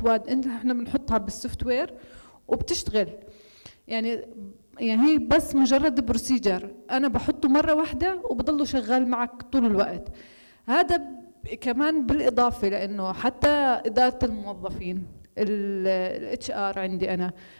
احنا بنحطها بالسوفت وير وبتشتغل. يعني هي بس مجرد بروسيجر انا بحطه مره واحده وبضله شغال معك طول الوقت. هذا كمان بالإضافة لأنه حتى إدارة الموظفين، الاتش ار عندي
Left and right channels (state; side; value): inverted; both; correlation -1.00